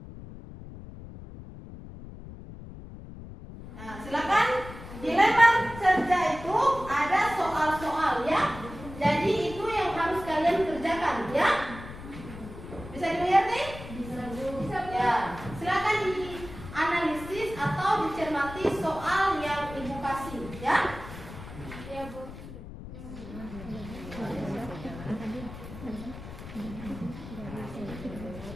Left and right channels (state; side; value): noise; left; rumble, 13 dB below the sound